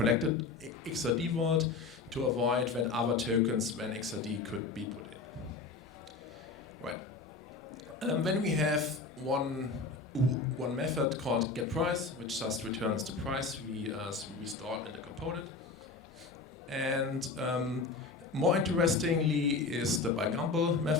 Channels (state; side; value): quieter; right; 4.1 dB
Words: XRD vault to avoid that other tokens when XRD could be put in. Right. Then we have one method called getPrice, which just returns the price we stored in the component. And more interestingly is the by Gumbel